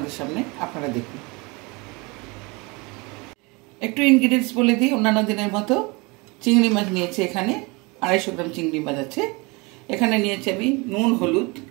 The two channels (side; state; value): left; quieter; 27.0 dB